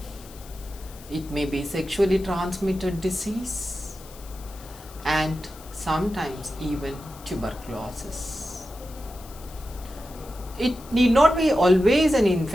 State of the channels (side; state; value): left; noise; hiss, 20 dB below the sound